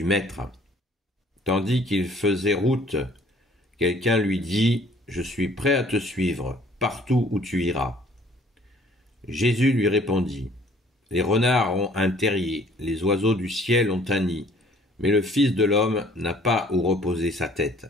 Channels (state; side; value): normal; both; correlation 0.57